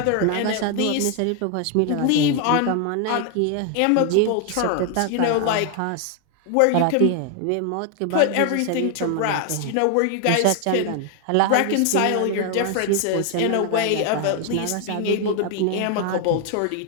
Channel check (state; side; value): different; both; correlation 0.00